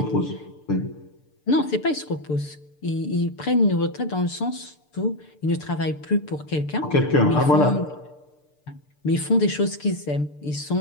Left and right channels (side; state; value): right; late; 6.8 ms